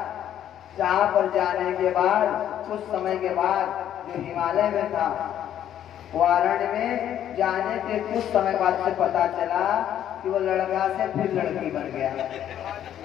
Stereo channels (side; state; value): right; quieter; 10.7 dB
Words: जहाँ पर जाने के बाद कुछ समय के बाद जो हिमालय में था वो अरण्य में जाने के कुछ समय बाद से पता चला कि वो लड़का से फिर लड़की बन गया।